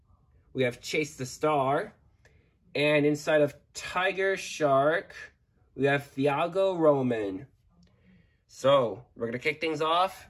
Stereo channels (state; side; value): identical; both; correlation 1.00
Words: we have Chase the Star. And inside of Tiger Shark, we have Thiago Roman. So, we're going to kick things off